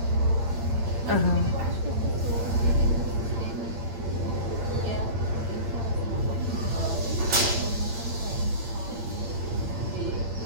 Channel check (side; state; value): left; late; 8.8 ms